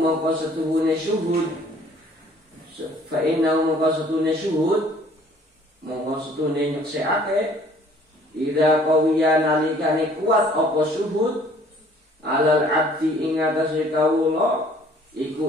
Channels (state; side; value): normal; both; correlation 0.56